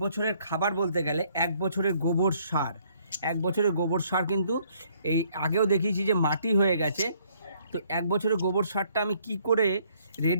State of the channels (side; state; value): both; inverted; correlation -0.65